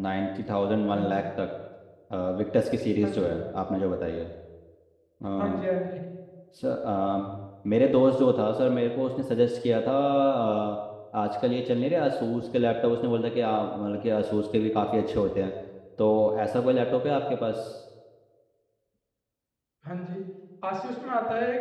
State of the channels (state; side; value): identical; both; correlation 1.00